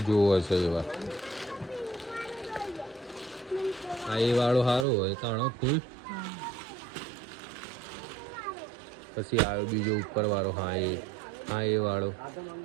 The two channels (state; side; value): drops out; left; at 4.9 s